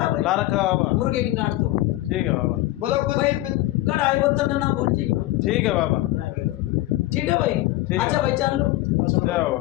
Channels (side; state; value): right; quieter; 17.2 dB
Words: भाई, ला रखा बाबा। मुर्गे की नाट दो ठीक है बाबा। बोलो कुछ भाई, कढ़ाई बोतल ना भूलिएगा। ठीक है बाबा। ठीक है भाई। है। अच्छा भाई चालू। जाओ